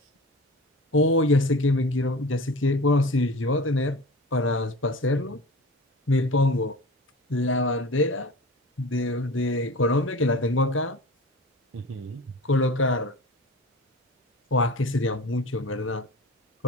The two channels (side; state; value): both; normal; correlation 0.36